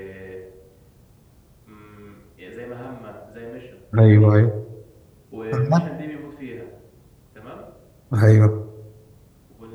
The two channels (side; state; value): both; identical; correlation 1.00